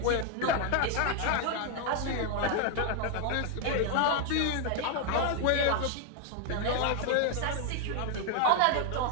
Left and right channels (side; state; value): both; different; correlation 0.00